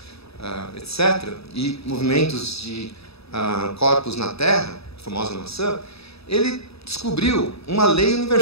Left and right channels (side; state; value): right; late; 0.78 ms